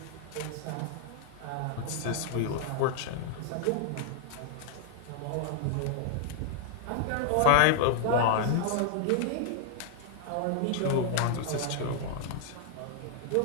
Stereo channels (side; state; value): both; different; correlation 0.00